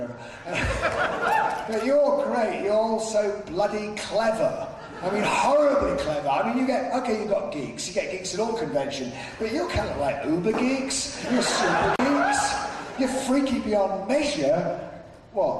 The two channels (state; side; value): identical; both; correlation 1.00